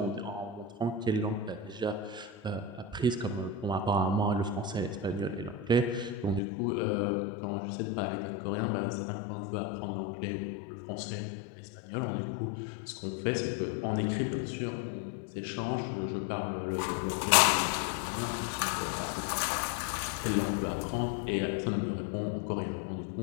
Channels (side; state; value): right; drops out; at 6.4 s